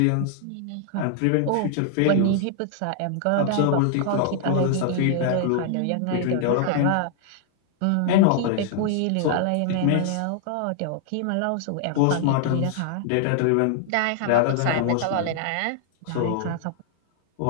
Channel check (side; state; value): both; different; correlation -0.01